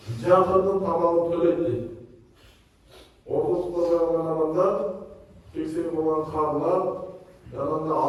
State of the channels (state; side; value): identical; both; correlation 1.00